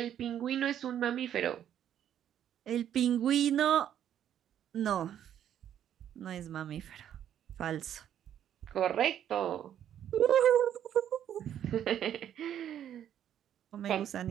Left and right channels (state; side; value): quieter; left; 10.3 dB